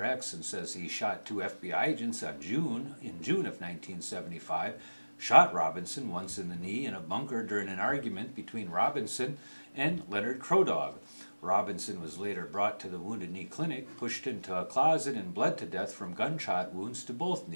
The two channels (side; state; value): both; inverted; correlation -1.00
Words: X and says he shot 2 FBI agents in June of 1975, shot Robinson once in the knee in a bunker during an argument between Robinson and Leonard Crodog. Robinson was later brought to the Wounded Knee Clinic, pushed into a closet, and bled to death from gunshot wounds to both